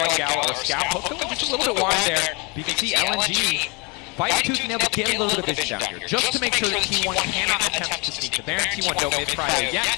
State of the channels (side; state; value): right; quieter; 29.8 dB